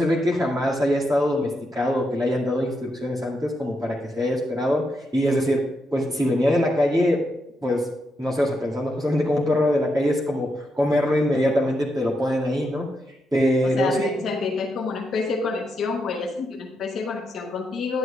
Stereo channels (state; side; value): normal; both; correlation 0.83